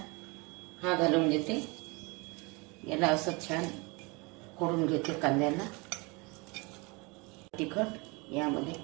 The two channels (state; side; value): quieter; left; 28.0 dB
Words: हा घालून घेते. याला असं छान फोडून घेते. कांद्याला तिखट यामध्ये